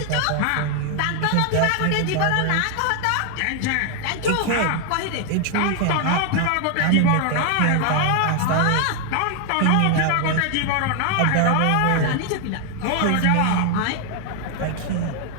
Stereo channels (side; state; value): both; different; correlation 0.00